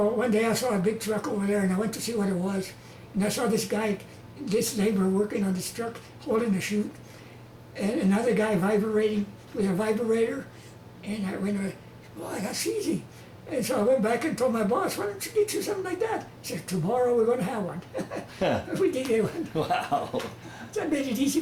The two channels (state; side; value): identical; both; correlation 1.00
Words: one day I saw a big truck over there, and I went to see what it was. And I saw this laborer working on this truck, holding the chute, and another guy vibrating with a vibrator. And I went, boy, that's easy. And so I went back and told my boss, why don't you get you something like that? He said, tomorrow we're going to have one. We did get one. Wow. That made it easy